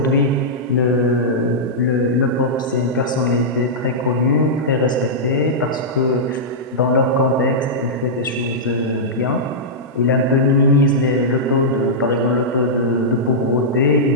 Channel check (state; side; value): normal; both; correlation -0.11